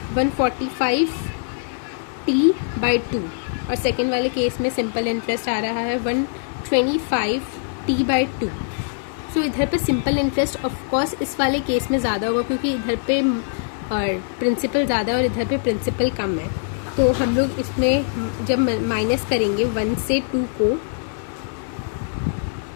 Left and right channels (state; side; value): silent; right; digital silence